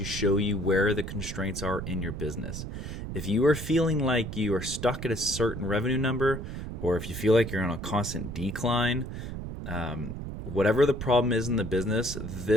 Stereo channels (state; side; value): noise; right; rumble, 7 dB below the sound